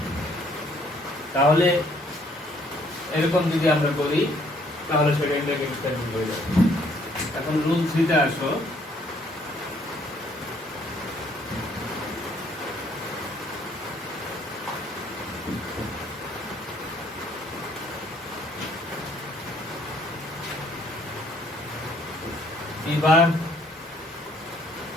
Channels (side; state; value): both; normal; correlation 0.64